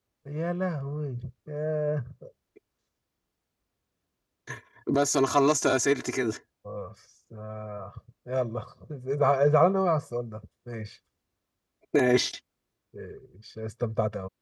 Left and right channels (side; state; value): both; identical; correlation 1.00